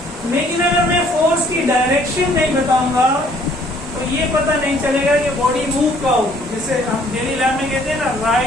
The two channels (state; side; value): normal; both; correlation 0.60